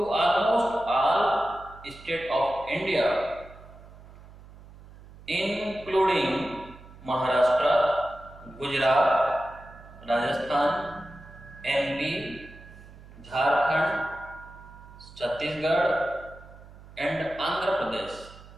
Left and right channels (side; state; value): right; noise; hum, 20 dB below the sound